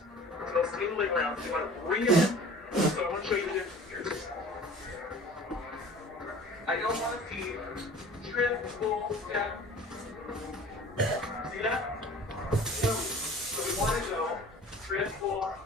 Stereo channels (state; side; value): normal; both; correlation 0.45